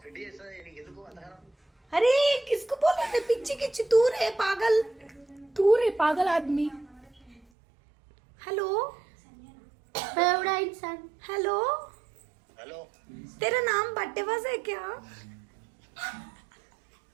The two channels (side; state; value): left; drops out; at 7.4 s